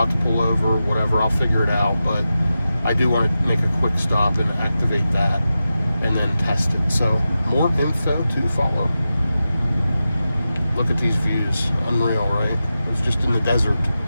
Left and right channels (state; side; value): inverted; both; correlation -0.92